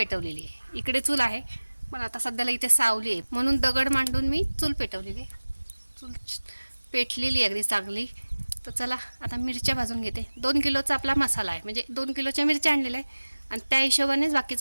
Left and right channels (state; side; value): inverted; both; correlation -1.00